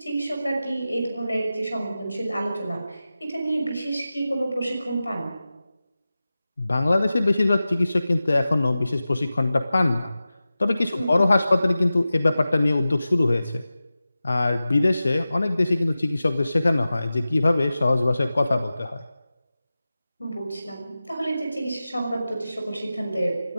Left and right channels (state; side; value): inverted; both; correlation -0.95